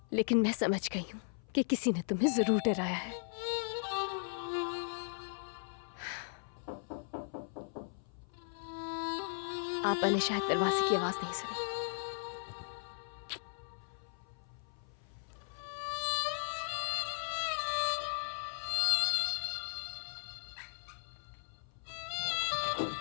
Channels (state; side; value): silent; right; 53 dB below the other